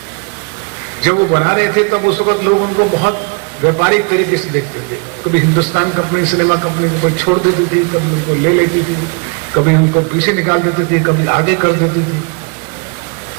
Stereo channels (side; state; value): left; quieter; 35.5 dB